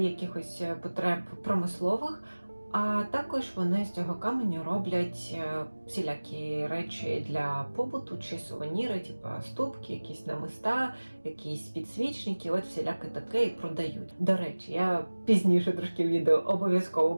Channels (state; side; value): inverted; both; correlation -1.00